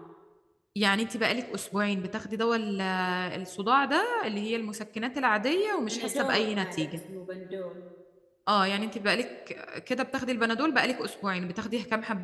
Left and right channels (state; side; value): identical; both; correlation 1.00